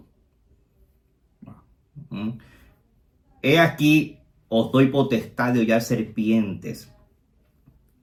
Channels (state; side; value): identical; both; correlation 1.00